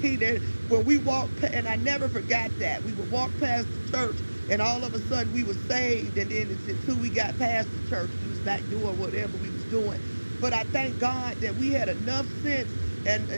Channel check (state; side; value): inverted; both; correlation -1.00